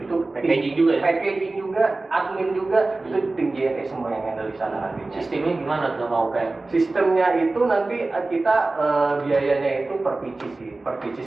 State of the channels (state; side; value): quieter; left; 3.2 dB